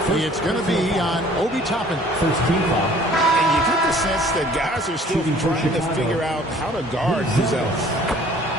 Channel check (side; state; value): both; normal; correlation 0.53